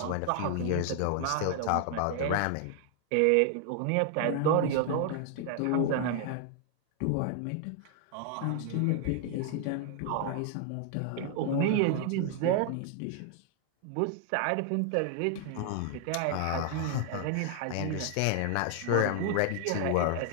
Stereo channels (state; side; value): different; both; correlation 0.00